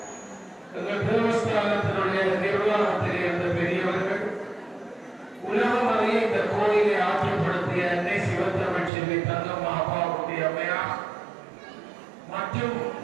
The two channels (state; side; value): drops out; left; at 8.9 s